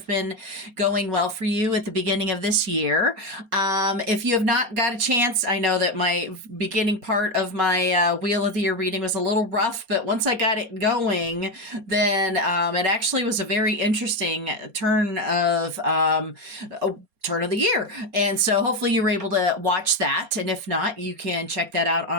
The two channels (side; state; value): left; late; 4.3 ms